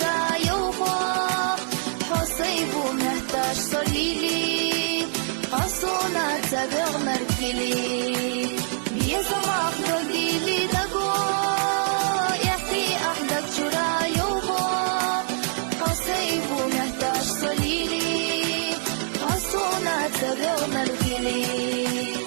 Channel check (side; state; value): left; silent; 62 dB below the other